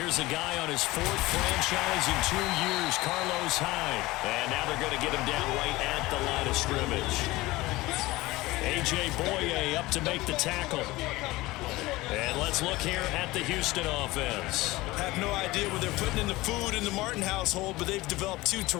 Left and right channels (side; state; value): right; quieter; 19.7 dB